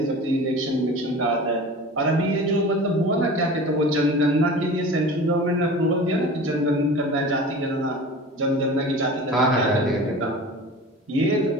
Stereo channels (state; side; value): normal; both; correlation 0.37